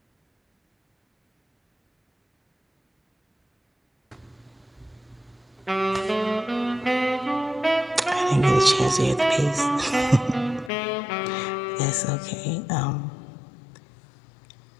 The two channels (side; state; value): right; drops out; at 10.7 s